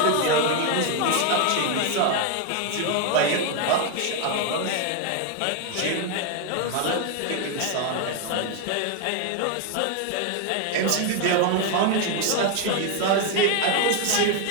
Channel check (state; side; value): different; both; correlation 0.01